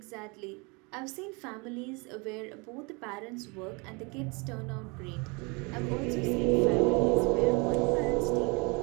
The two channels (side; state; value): left; quieter; 29.3 dB